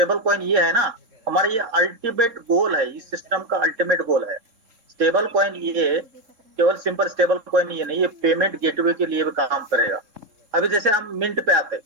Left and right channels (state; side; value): late; left; 3.7 ms